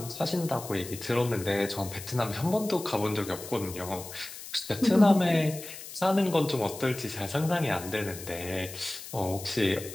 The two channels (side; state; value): left; noise; hiss, 12 dB below the sound